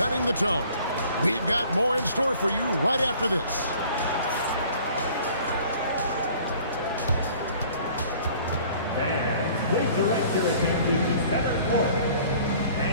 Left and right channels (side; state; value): both; inverted; correlation -0.52